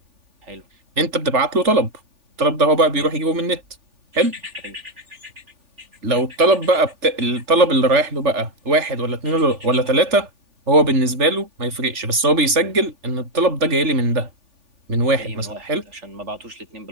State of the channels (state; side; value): late; left; 3.4 ms